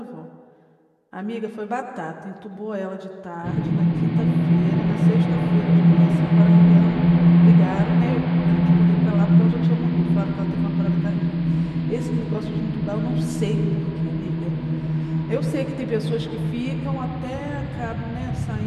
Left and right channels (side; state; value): both; identical; correlation 1.00